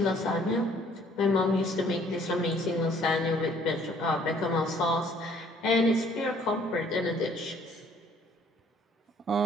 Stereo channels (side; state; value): both; normal; correlation 0.60